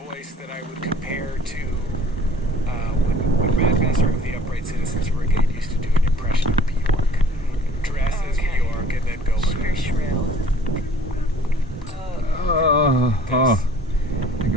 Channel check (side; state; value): both; normal; correlation 0.53